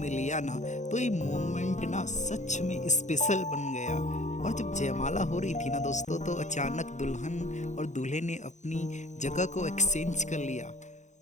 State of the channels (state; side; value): late; right; 0.35 ms